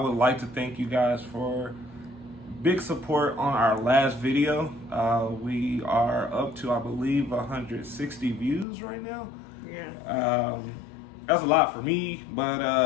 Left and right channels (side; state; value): right; drops out; at 8.7 s